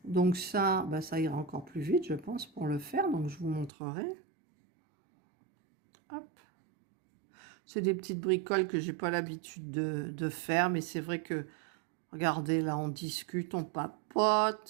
Donc ça, bah, ça ira encore plus vite, je pense, pour le faire. Donc je vous montrerai. Hop. C'est des petites bricoles que j'ai pas l'habitude de faire, mais c'est vrai que, regardez, là, on discute, on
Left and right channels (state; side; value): drops out; left; at 3.7 s